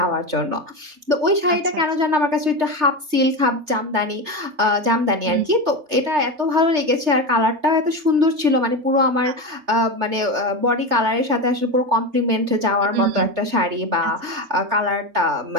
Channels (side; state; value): left; late; 3.3 ms